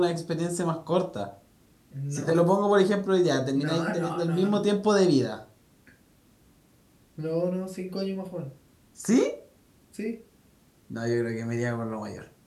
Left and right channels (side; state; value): both; identical; correlation 1.00